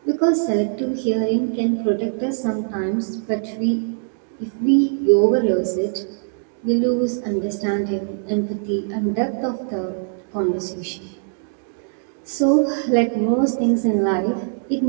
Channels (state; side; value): silent; left; digital silence